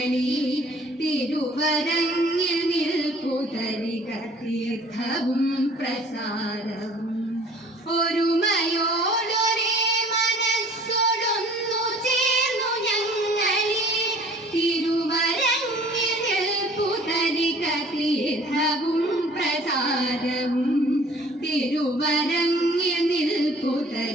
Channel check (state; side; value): normal; both; correlation 0.51